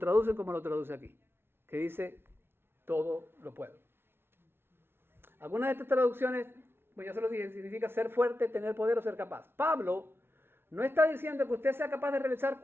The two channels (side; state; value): left; late; 0.11 ms